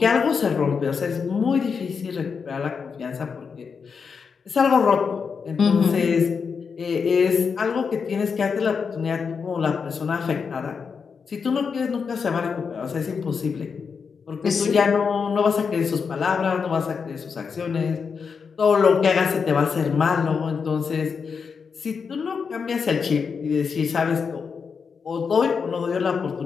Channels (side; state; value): right; quieter; 5.8 dB